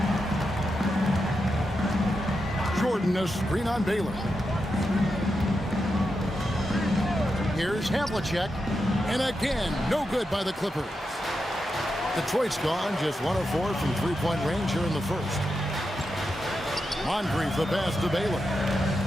Jordan, a screen on Baylor. Here's Havlicek. And again, no good by the Clippers. Detroit's gone just 1 of 4 from three-point range here in the first. Moncrief the pass to Baylor.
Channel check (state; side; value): normal; both; correlation 0.87